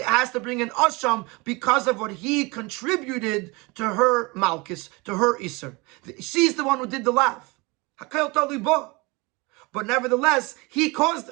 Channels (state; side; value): quieter; left; 25.9 dB